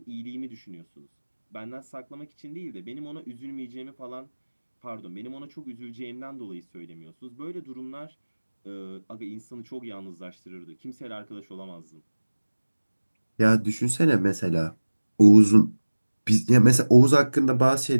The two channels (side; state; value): both; inverted; correlation -1.00